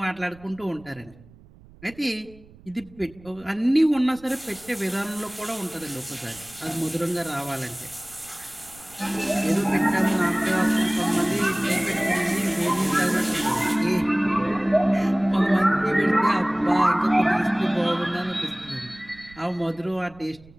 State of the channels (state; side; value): noise; right; rumble, 24 dB below the sound